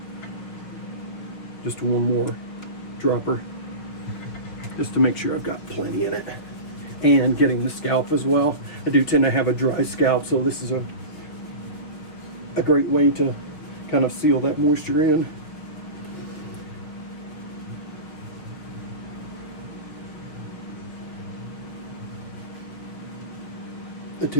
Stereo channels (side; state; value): right; late; 6.3 ms